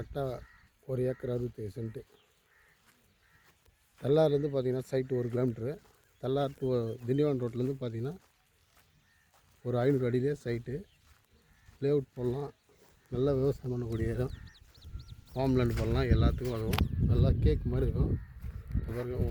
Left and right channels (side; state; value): both; identical; correlation 1.00